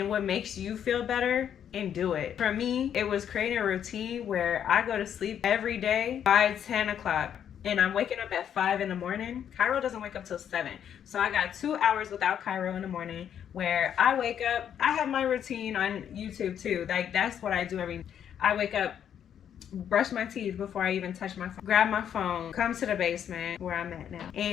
what makes you feel better, and do it. For me, it was creating a routine where I go to sleep every day by 10 o'clock. And I'm waking up at 5 in the morning. Kairo doesn't wake up till 7. So I got 2 hours without Kairo in the morning where I wake up. I have my routine on YouTube too. Like, that's what I do I wake up, brush my teeth before I even touch my phone, grab my phone, come to the basement where I'm at now,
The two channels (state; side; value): quieter; right; 9.1 dB